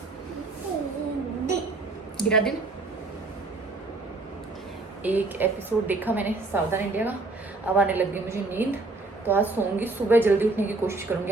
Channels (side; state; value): left; quieter; 3.3 dB